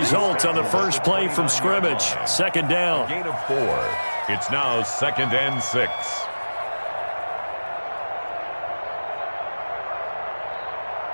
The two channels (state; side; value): inverted; both; correlation -1.00